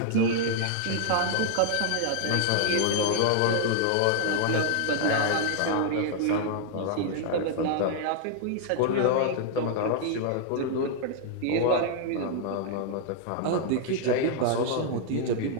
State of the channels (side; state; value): both; different; correlation -0.01